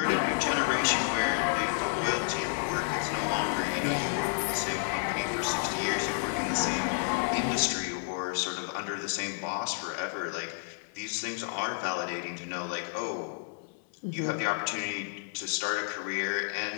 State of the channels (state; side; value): silent; right; 57 dB below the other